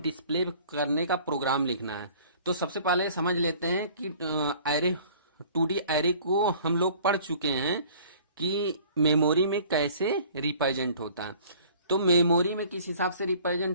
डिस्प्ले करने का प्रोग्राम लिखना है। तो सबसे पहले समझ लेते हैं कि एरे 2D एरे को हम लोग पढ़ चुके हैं कि मेमोरी में कैसे रिप्रेजेंट होता है। तो मेमोरी में किस हिसाब से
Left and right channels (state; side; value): inverted; both; correlation -0.51